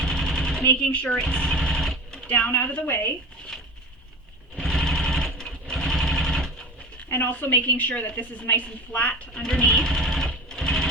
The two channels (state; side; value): normal; both; correlation 0.32